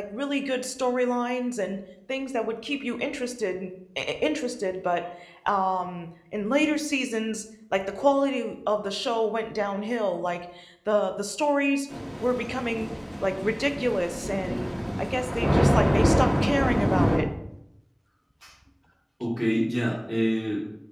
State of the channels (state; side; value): identical; both; correlation 1.00